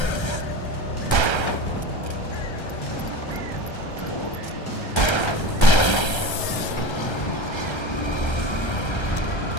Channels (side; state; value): right; late; 1.3 ms